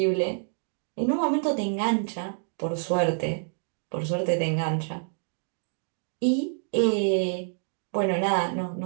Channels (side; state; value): left; silent; digital silence